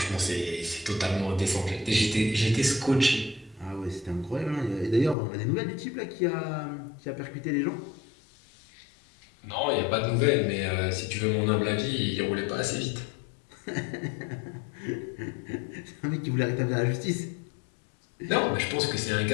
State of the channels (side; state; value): right; drops out; at 5.2 s